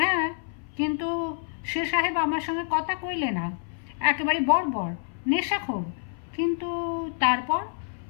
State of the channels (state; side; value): silent; right; 57 dB below the other